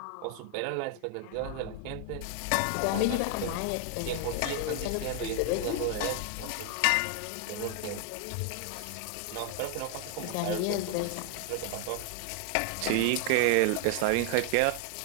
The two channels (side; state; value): both; different; correlation 0.00